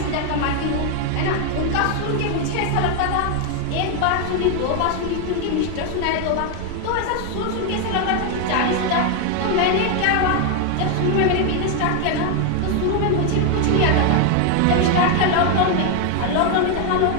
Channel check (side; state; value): both; different; correlation 0.01